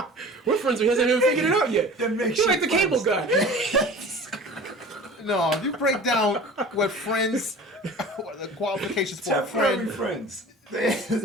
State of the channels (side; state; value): both; normal; correlation 0.40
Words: We're friends. We hasn't even figured it out yet. They're You're makeshift like the cable guy. No, if you break down what friends, what the qualifications for a Temporary friend. friends.